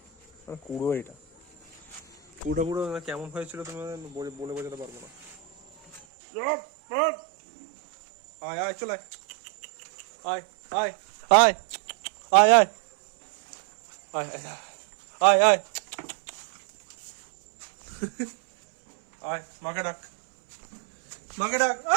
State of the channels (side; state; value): left; drops out; at 6.0 s